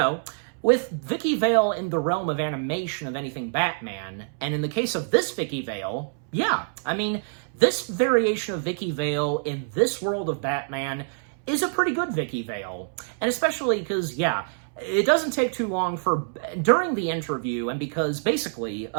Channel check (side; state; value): left; silent; 61 dB below the other